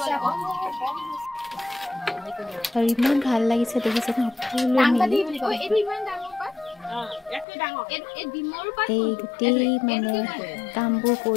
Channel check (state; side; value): drops out; right; at 7.5 s